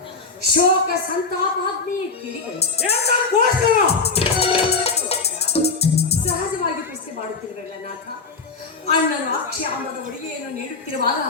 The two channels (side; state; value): right; quieter; 4.4 dB